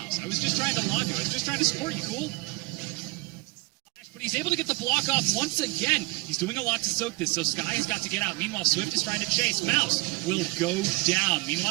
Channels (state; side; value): quieter; left; 25.6 dB